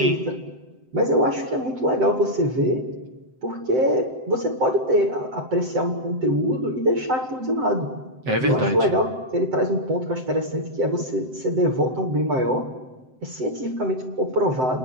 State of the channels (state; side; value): late; left; 7.8 ms